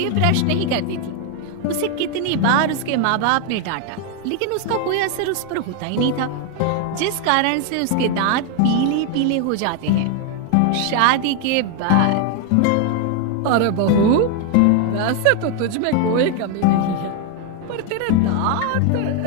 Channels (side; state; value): both; different; correlation 0.01